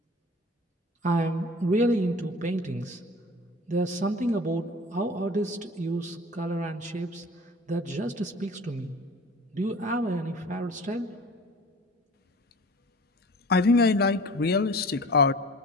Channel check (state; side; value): normal; both; correlation 0.42